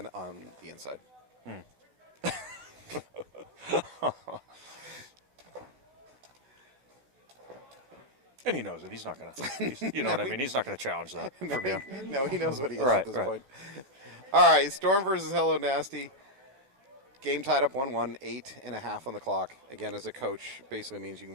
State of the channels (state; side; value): late; left; 15 ms